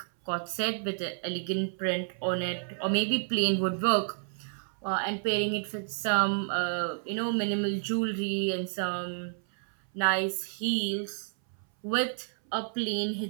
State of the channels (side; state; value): left; silent; 58 dB below the other